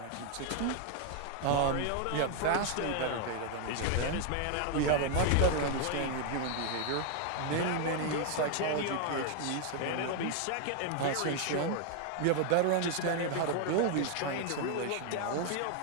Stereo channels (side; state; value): both; different; correlation 0.00